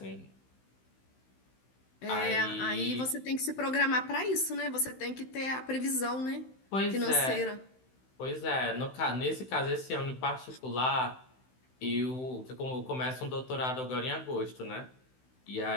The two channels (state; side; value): late; right; 16 ms